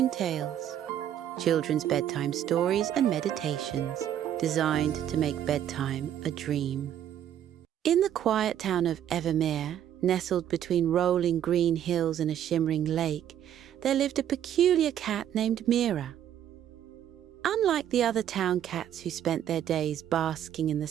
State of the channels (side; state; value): left; quieter; 10.5 dB